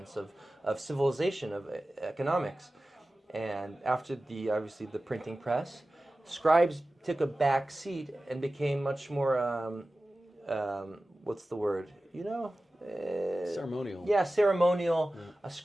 of civilization, of economics. And after obviously the printing press, scribes took a back seat and became much more, what's the word? Ceremonial. Yeah, ceremonial. A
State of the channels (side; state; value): both; normal; correlation 0.96